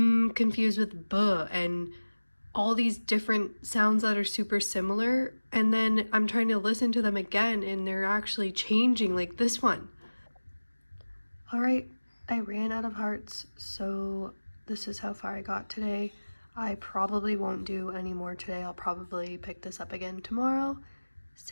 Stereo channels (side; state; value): both; inverted; correlation -1.00